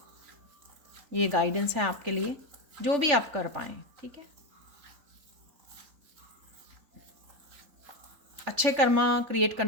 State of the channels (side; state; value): left; late; 3.4 ms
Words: ये गाइडेंस है आपके लिए, जो भी आप कर पाएँ। ठीक है, अच्छे कर्मा क्रिएट